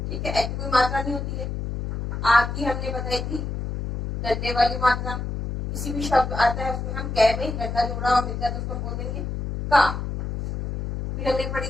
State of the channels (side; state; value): left; noise; hum, 4 dB below the sound